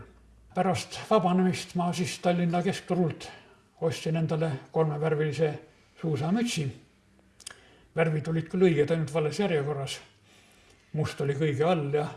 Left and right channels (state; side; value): identical; both; correlation 1.00